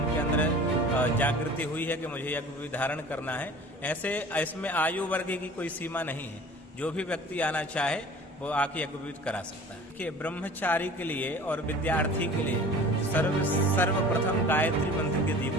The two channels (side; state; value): both; normal; correlation 0.44